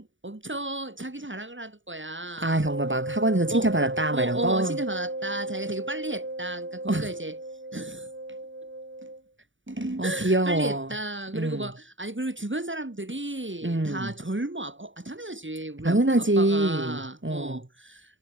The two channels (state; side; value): late; left; 0.56 ms